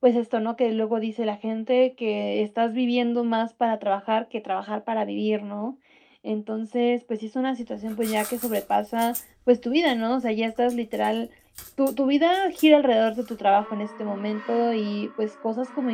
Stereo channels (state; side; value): identical; both; correlation 1.00